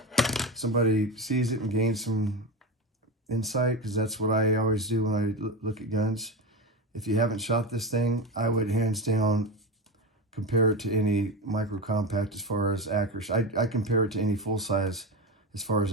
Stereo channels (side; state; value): both; normal; correlation 0.20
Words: somebody sees it and gains some insight, because that's what I always do when I look at guns. If you haven't shot this thing, I would hands down compare it to any micro compact as far as accuracy. I compare it to any full size as far